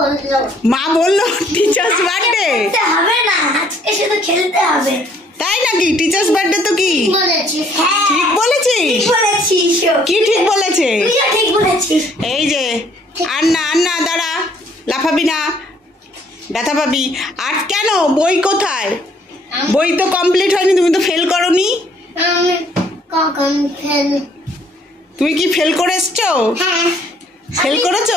মা বললো টিচার্স বার্থডে হবে না, আজকে শুধু খেলতে হবে। তাই নাকি? টিচার্স বার্থডে তো কি ঠিক বলেছিস? কি ঠিক বলেছে? এই যে আর না দাঁড়া, লাফাবি না, ব্যথা পাবি। আর কেন? বই কোথায়? বই তো কমপ্লিট হয়নি, তুমি তো ফেল করনি। তুমি কি ফেল করে এসছো? ফেল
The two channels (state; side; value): normal; both; correlation 0.63